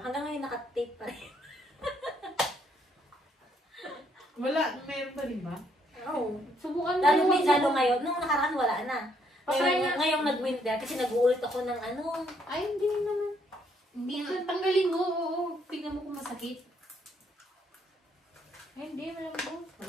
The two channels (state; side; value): normal; both; correlation 0.70